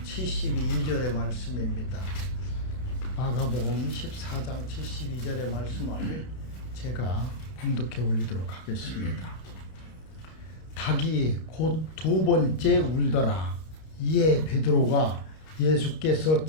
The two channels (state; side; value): late; right; 32 ms